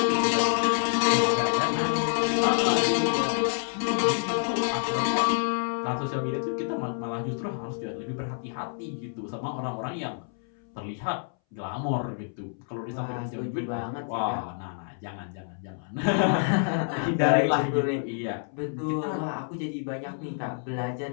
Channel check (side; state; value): right; silent; 59 dB below the other